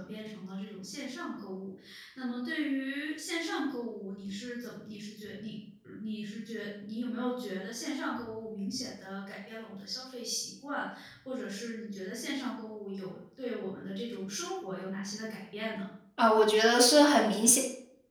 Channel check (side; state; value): both; identical; correlation 1.00